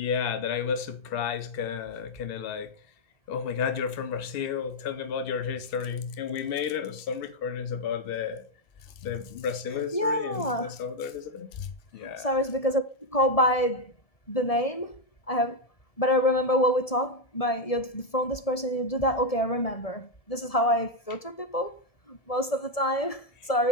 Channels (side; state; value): right; late; 1.7 ms